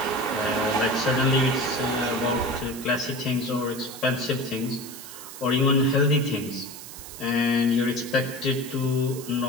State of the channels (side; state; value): right; noise; hiss, 13 dB below the sound